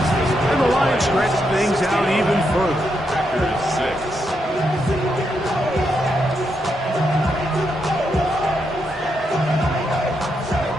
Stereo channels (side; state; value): both; normal; correlation 0.81